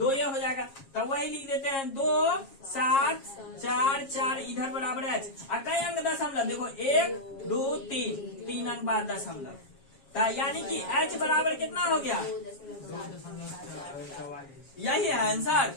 ये हो जाएगा, तो वही लिख देते हैं 2 7 4 4, इधर बराबर है कई अंक दशमलव, देखो 1 2 3 अंक बाद दशमलव, तो यानी कि h बराबर कितना हो गया, यही है आंसर।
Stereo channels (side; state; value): right; late; 7.4 ms